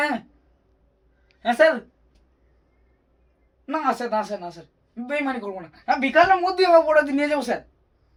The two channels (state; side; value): identical; both; correlation 1.00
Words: হ্যাঁ হ্যাঁ স্যার। না স্যার, না স্যার, না স্যার, বেইমানি করবো না। হ্যাঁ বিকালের মধ্যে আমার অপরাধী নিয়ে যাবো স্যার।